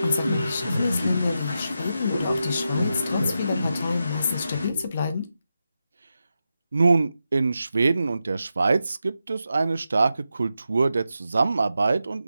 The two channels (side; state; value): both; inverted; correlation -0.88